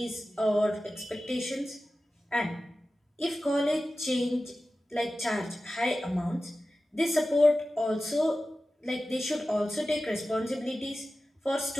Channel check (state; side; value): normal; both; correlation 0.95